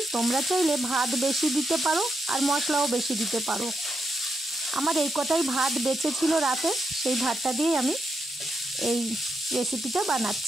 তোমরা চাইলে ভাত বেশি দিতে পারো আর মশলাও বেশি দিতে পারো। আমার এই কটাই ভাত বেঁচে ছিল রাতে, সেই ভাতটা দিয়েই আমি এই রেসিপিটা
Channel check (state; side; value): normal; both; correlation 0.83